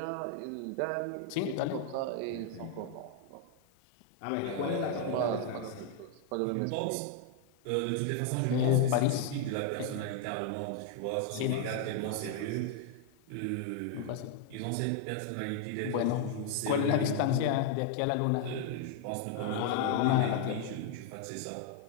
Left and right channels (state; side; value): different; both; correlation 0.00